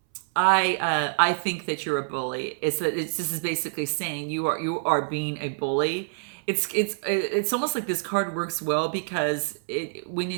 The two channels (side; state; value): left; silent; 61 dB below the other